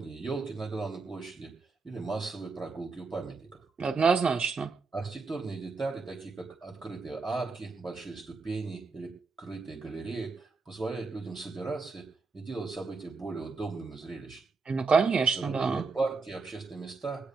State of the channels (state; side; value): quieter; left; 4.3 dB